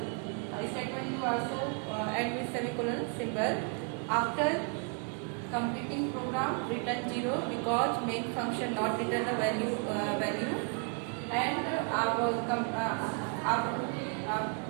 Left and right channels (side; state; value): left; quieter; 37.4 dB